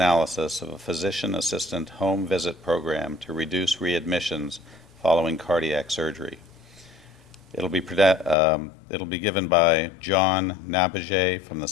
of a Physician Assistant Home Visit Program to Reduce Readmissions Following Cardiac Surgery. It'll be given by John Nabagiez from the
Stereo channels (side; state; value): right; drops out; at 8.3 s